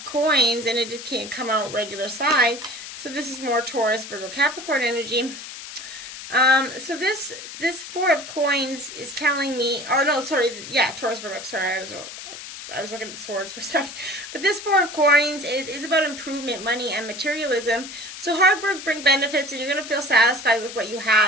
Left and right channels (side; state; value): left; noise; hiss, 11 dB below the sound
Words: Coins, and it can't come out regular side. So this is more Taurus, Virgo, Capricorn energy. So this Four of Coins is telling me, oh no, sorry, yeah, Taurus, Virgo, sorry, I was looking at the swords for a second. But this Four of Coins is about improvement, money, and materialism. So hard work brings benefits, and you're going to feel satisfied with what you